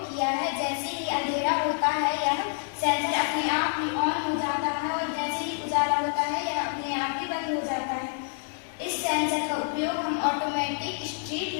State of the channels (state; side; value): silent; right; 57 dB below the other